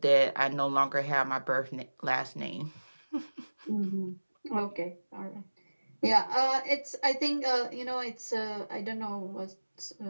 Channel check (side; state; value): both; inverted; correlation -1.00